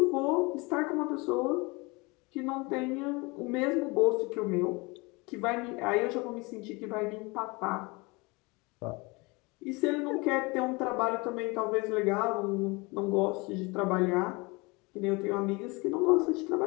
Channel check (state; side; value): quieter; right; 26.3 dB